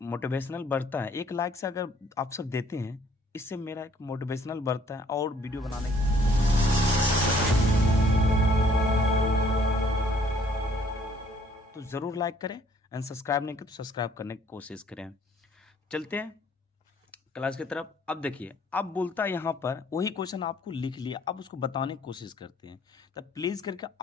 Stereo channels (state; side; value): normal; both; correlation 0.61